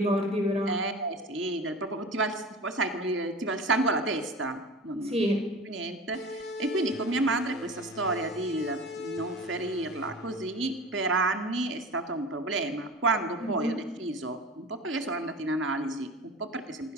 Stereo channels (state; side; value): normal; both; correlation 0.35